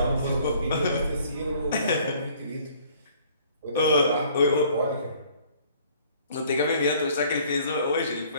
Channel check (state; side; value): inverted; both; correlation -0.57